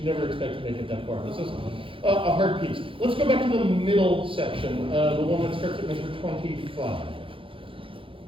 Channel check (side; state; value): left; late; 0.25 ms